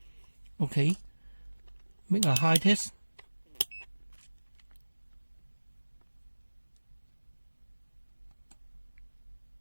Okay, make a high test.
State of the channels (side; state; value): both; inverted; correlation -1.00